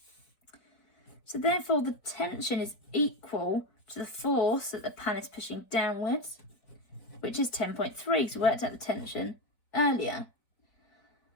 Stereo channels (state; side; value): late; right; 4.6 ms